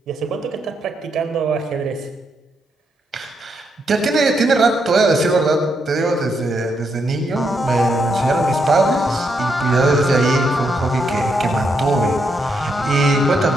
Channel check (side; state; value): both; normal; correlation 0.79